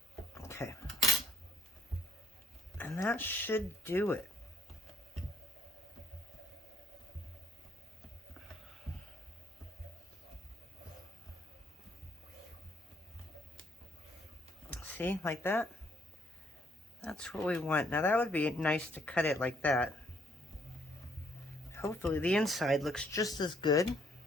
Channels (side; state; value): both; normal; correlation 0.67